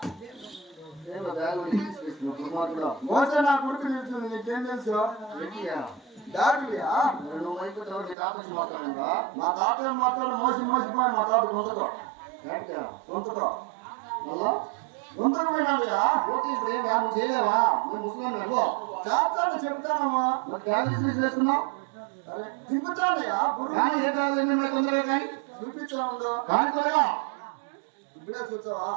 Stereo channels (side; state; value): left; drops out; at 8.2 s